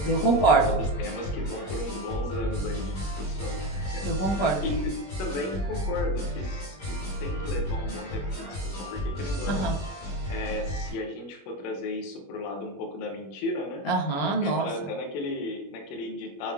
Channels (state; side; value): late; right; 21 ms